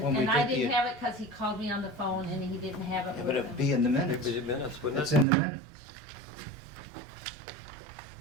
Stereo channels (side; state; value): left; drops out; at 5.2 s